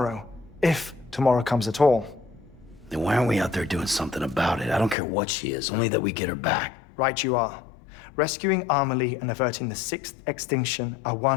If tomorrow comes at all. Then why aren't we out there doing something about it? I don't care what she is, only that we get her back. Right you are. Rescuing Amelie and averting the sixth extinction are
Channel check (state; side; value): drops out; right; at 5.0 s